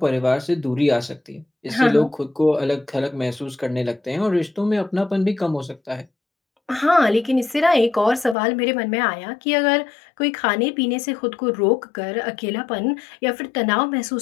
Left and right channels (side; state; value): right; drops out; at 8.3 s